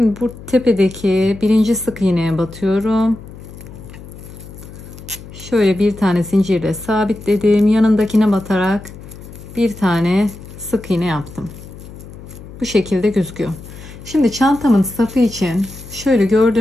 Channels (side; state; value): left; noise; hum, 16 dB below the sound